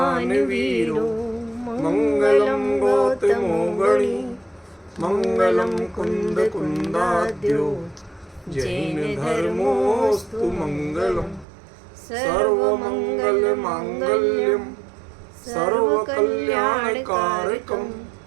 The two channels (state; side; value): drops out; left; at 11.5 s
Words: वीरो मंगलम गौतमो गणी मंगलम कुंद कुंदाद्यो जैन धर्मोस्तु मंगलम सर्वमंगल मांगल्यम सर्वकल्याणकारकम